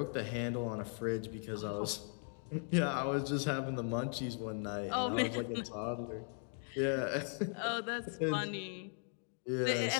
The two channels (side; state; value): right; silent; 52 dB below the other